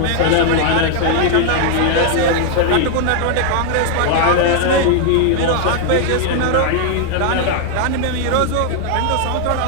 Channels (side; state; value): both; different; correlation 0.00